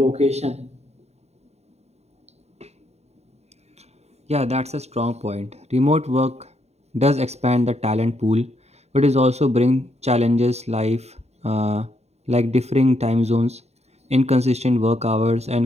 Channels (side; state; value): left; late; 0.31 ms